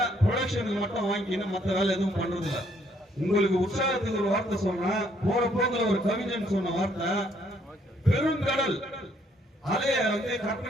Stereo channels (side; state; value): both; normal; correlation 0.68